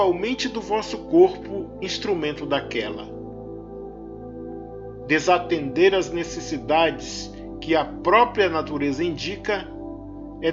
do vosso corpo, instrumento daquela. Desatender as necessidades que a própria natureza indica é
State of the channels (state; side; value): identical; both; correlation 1.00